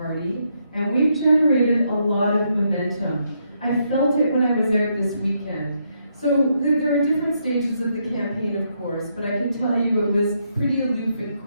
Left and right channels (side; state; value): both; inverted; correlation -0.77